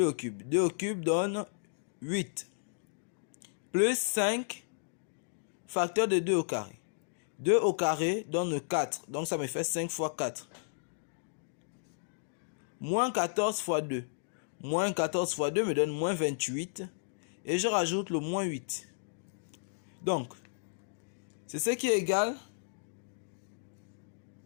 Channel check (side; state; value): right; silent; digital silence